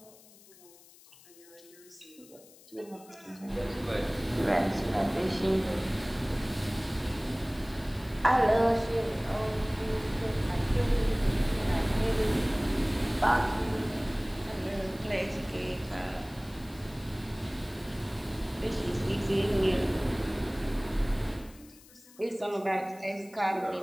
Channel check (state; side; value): noise; left; hiss, 23 dB below the sound